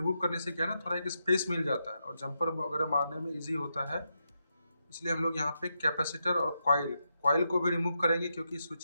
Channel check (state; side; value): inverted; both; correlation -0.85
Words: करने से क्या है ना, थोड़ा एक स्पेस मिल जाता है और जंपर वगैरह मारने में इजी होता है। इसलिए हम लोग यहाँ पे कैपेसिटर और कॉइल को भी रिमूव करेंगे, क्योंकि